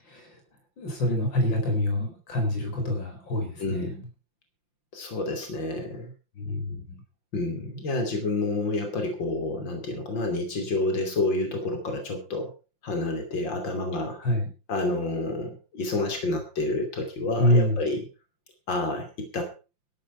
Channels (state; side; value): late; right; 5.8 ms